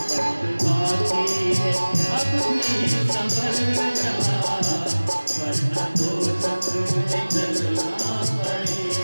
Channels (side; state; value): both; inverted; correlation -1.00